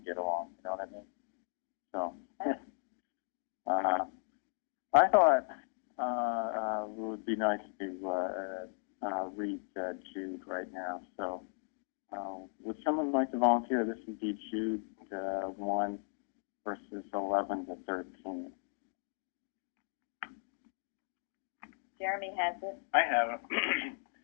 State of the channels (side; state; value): right; silent; 53 dB below the other